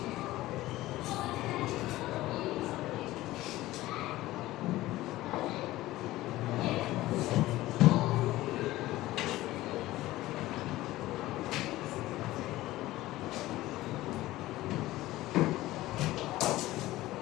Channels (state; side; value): quieter; right; 16.9 dB